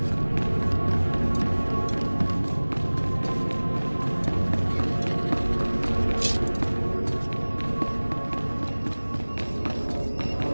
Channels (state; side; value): inverted; both; correlation -1.00